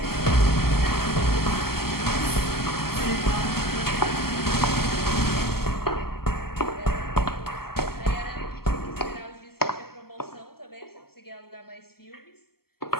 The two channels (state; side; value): late; right; 0.95 ms